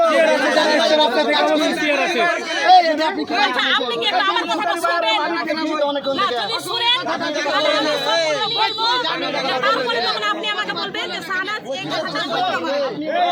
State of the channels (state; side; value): identical; both; correlation 1.00